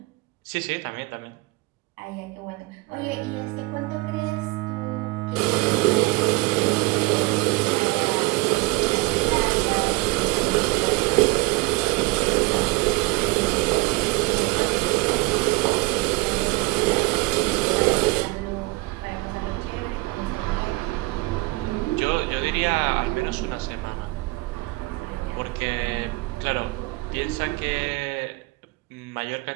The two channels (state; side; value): quieter; left; 23.1 dB